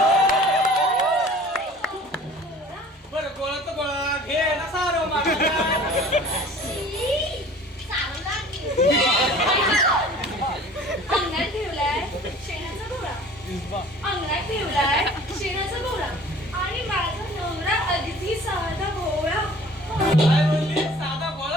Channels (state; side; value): normal; both; correlation 0.47